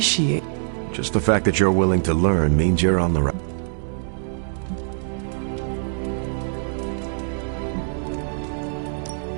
Just the fact that you're willing to learn means you're on the right.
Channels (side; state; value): left; silent; digital silence